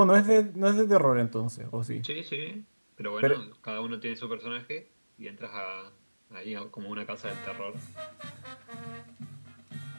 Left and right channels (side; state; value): both; inverted; correlation -1.00